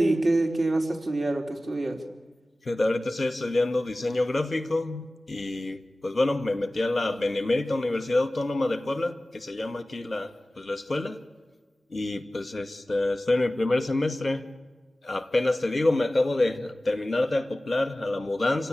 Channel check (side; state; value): both; normal; correlation 0.96